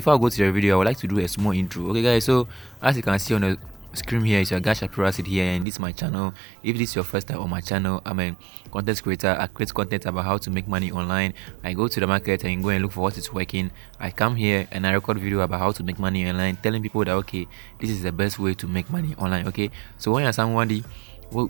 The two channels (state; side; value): drops out; left; at 5.7 s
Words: I go to the video, I would like to do a small intro. Okay guys, so as you can see on the screen here, it's your guy Shapiro Acid here, and this is my channel. If this is your first time on my channel, I'm a content creator. I create content about how to make money online. I go to the market and go and look for what is working. I come here and I record video about how to make money online, telling people that okay, this is the best way to make money online. Okay, so when you're somebody